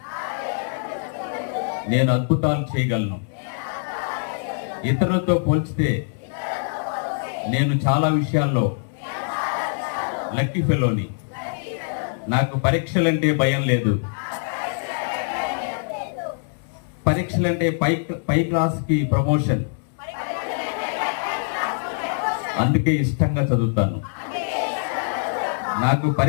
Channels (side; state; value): right; silent; digital silence